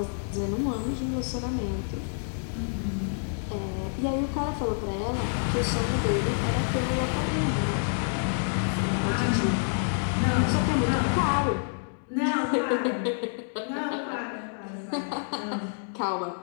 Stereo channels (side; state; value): right; silent; digital silence